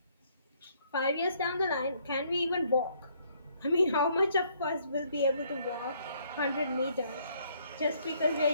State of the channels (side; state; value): both; inverted; correlation -0.67